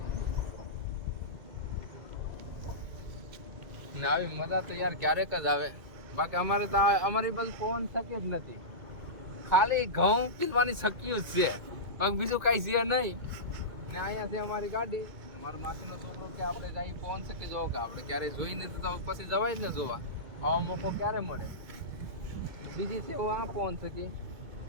ને આવી મજા તો યાર ક્યારેક જ આવે. બાકી અમારે તો અમારી બાજુ પવન સખી જ નથી. ખાલી ઘઉં પીવાની શક્યું જ છે, બીજું કઈ છે નહીં. ને અહીંયા છે અમારી ગાડી. મારો માસીનો છોકરો કે આપણે અહીં પહોંચ શકે જોવો કે આપણે ક્યારેય જોઈ નથી તો પછી જવાય જ ને જોવા. આવો મોકો ક્યારે મળે. બીજી છે આ પહોંચ શકી,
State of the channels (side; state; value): left; late; 2.2 ms